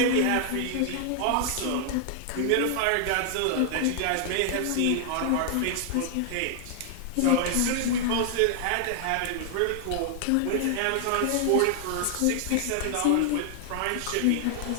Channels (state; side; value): different; both; correlation 0.00